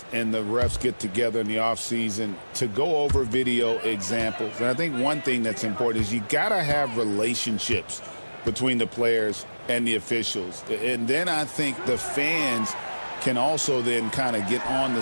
and the refs get together in the offseason to go over video examples. And I think one thing that's important is you got to have relationships between the players and the officials. And then I think the fans can also then kind of get on the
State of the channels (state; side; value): inverted; both; correlation -1.00